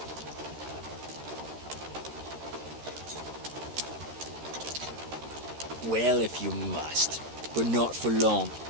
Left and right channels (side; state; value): left; late; 13 ms